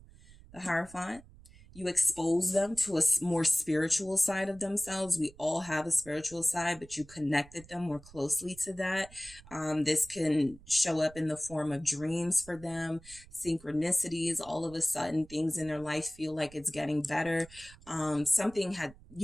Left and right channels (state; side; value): noise; right; rumble, 22 dB below the sound